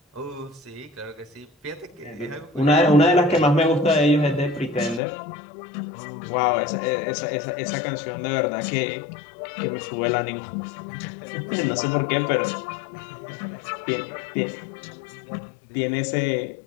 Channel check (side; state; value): right; drops out; at 5.0 s